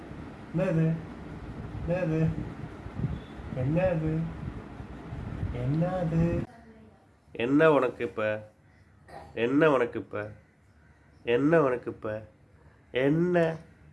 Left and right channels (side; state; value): both; identical; correlation 1.00